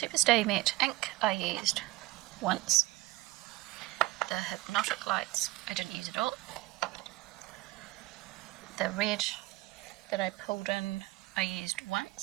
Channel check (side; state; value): left; quieter; 19.4 dB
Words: Matte Ink I used once. The Hypnotic Lights I didn't use at all. The red that I pulled in I used